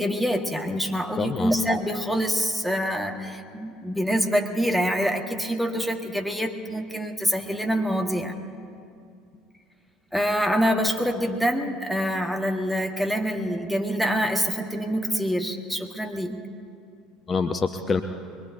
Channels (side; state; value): both; normal; correlation 0.83